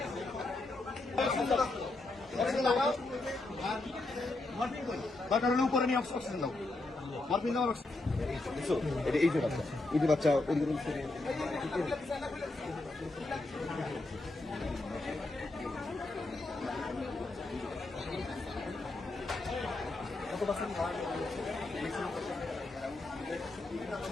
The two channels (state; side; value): quieter; right; 3.0 dB